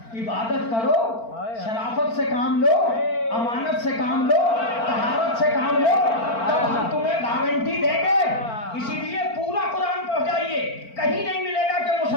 عبادت کرو شرافت سے کام لو امانت سے کام لو طہارت سے کام لو تب ہم تمہیں گارنٹی دیں گے. اسی لیے پورا قرآن پڑھ جائیے. کہیں نہیں ملے گا کہ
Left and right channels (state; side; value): late; right; 4.4 ms